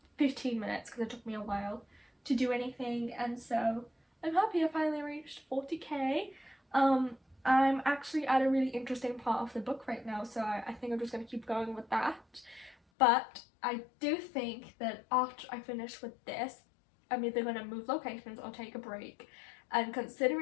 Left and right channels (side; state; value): right; drops out; at 12.8 s